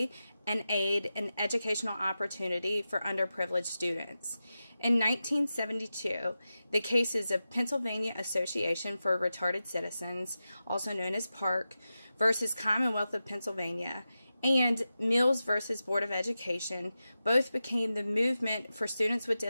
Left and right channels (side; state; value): both; inverted; correlation -0.92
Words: and aid in educational opportunity for underprivileged students. In 1972, the cases of Pennsylvania Association for Retarded Citizens, also known as PARC, versus Commonwealth of Pennsylvania, and Mills versus Board of Education both became the movement for students with